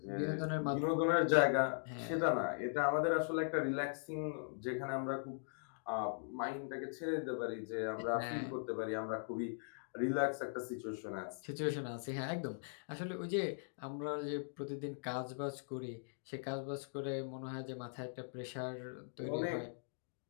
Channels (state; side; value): silent; right; digital silence